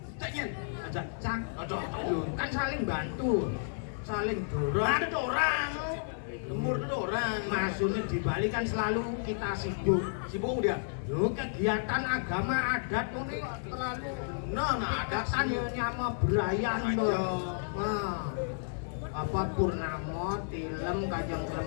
caknya aja cak aduh kan saling bantu saling dorong ada orang lembur itu orang maksudnya di Bali kan selalu kita sibuk dia loh kegiatan agama adat ini terlalu ada kan ya nyama berayan nah apa purnama tilem kajang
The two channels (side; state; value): right; silent; 56 dB below the other